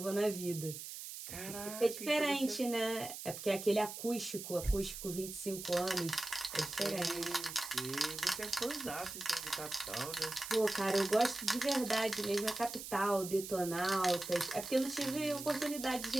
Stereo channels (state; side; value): noise; right; hiss, 9 dB below the sound